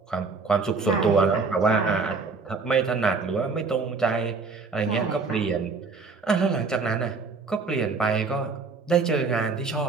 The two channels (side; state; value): left; quieter; 4.5 dB